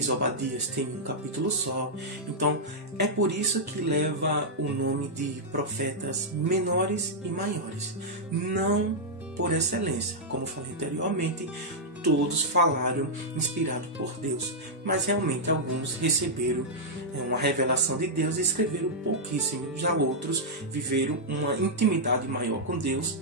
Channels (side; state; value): both; normal; correlation -0.07